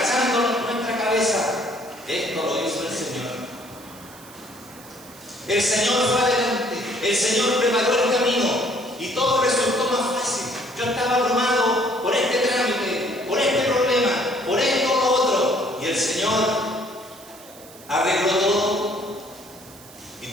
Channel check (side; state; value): right; noise; hiss, 21 dB below the sound